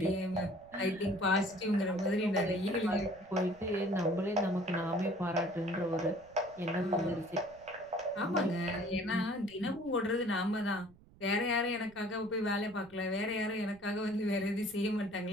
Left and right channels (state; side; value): noise; right; rumble, 25 dB below the sound